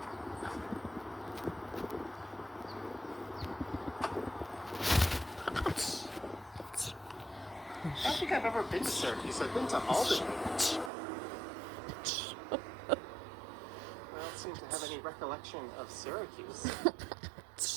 I don't think I've ever been to Syracuse. I've been to Albany. Well, any recollection of Syracuse?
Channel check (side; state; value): left; drops out; at 10.9 s